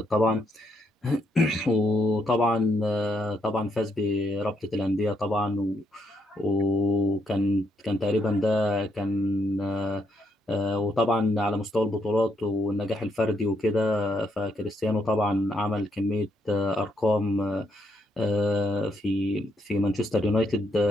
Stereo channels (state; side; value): normal; both; correlation 0.75